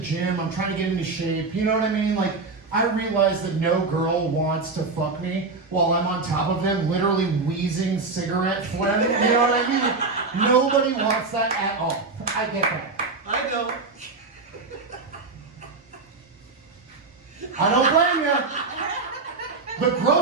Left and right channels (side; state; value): left; quieter; 4.0 dB